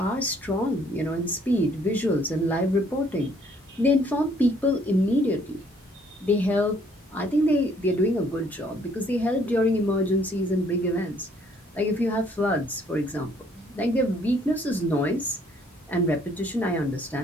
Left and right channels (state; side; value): normal; both; correlation 0.63